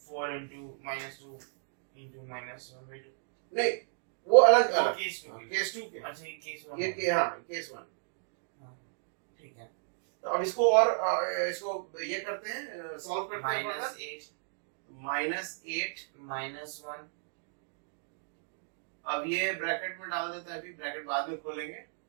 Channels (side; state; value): left; silent; digital silence